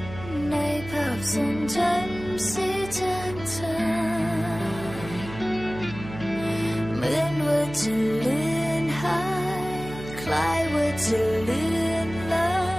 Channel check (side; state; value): right; noise; hum, 12 dB below the sound